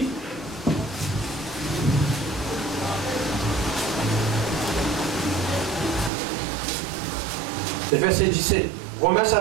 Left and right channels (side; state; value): left; drops out; at 6.1 s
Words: Le verset 17. Romains